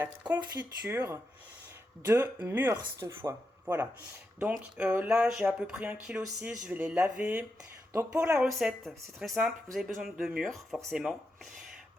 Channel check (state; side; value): normal; both; correlation 0.86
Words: confiture de mûres cette fois. Voilà, donc là j'ai à peu près 1,6 kg, je vais les laver. Donc pour la recette, c'est très simple, vous avez besoin de mûres forcément,